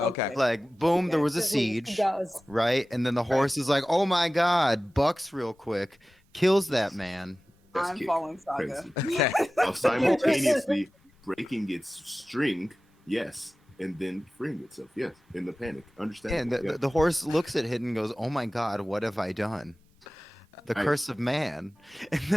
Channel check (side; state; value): both; normal; correlation 0.96